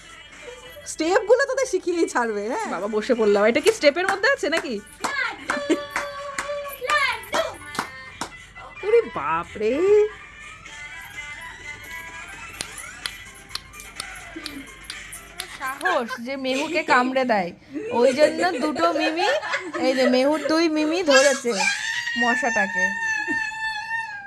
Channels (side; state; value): both; identical; correlation 1.00